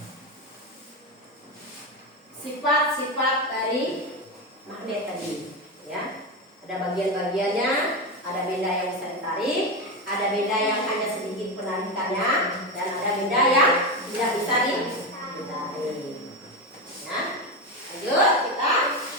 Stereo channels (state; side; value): normal; both; correlation 0.15